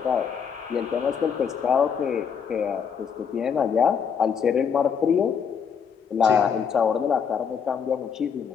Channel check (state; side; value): quieter; right; 6.9 dB